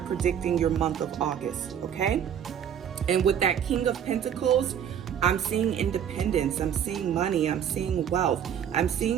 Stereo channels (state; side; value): quieter; left; 8.8 dB